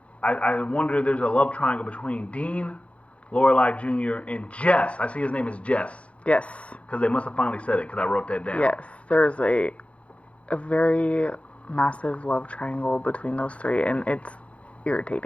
I wonder if there's a love triangle between Dean, Lorelai Jr., and Jess. I see his name is Jess. Yes. Because they must have finally said it because I wrote that down. Yes. There's a very massive love triangle between those three, and it's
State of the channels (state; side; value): late; right; 0.062 ms